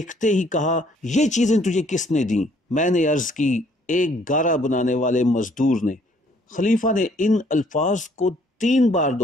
ہی کہا یہ چیزیں تجھے کس نے دیں؟ میں نے عرض کی ایک گارا بنانے والے مزدور نے۔ خلیفہ نے ان الفاظ کو 3 بار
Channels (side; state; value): both; normal; correlation 0.63